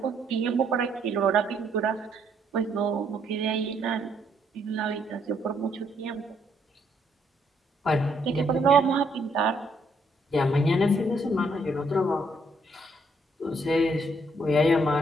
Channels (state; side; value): normal; both; correlation 0.70